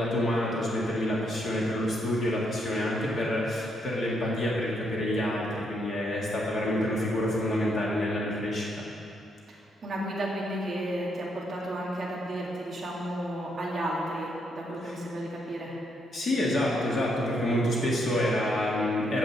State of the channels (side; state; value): both; normal; correlation 0.76